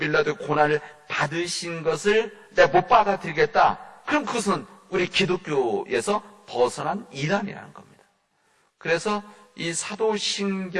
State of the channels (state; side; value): identical; both; correlation 1.00